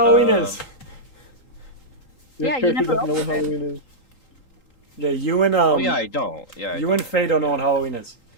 is. Your Yeah, you character never doesn't know what opened it. Halloween is. Yeah, you and Oh yeah, I don't. Yeah. I you and Faye don't know what Halloween is.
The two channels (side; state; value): right; late; 3.8 ms